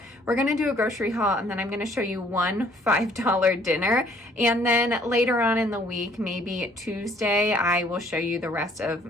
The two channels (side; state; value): both; normal; correlation 0.60